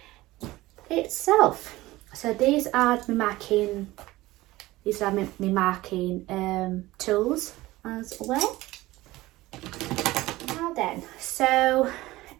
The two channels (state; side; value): quieter; left; 18.3 dB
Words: itself. So these are my marking tools as well. Now then, so